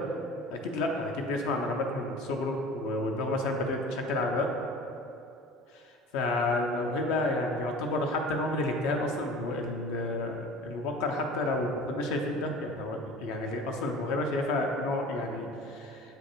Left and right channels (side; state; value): both; normal; correlation 0.41